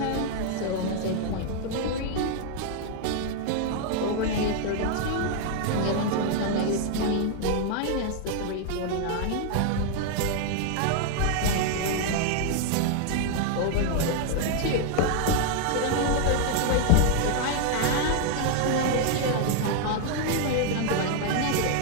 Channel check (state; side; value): different; both; correlation 0.00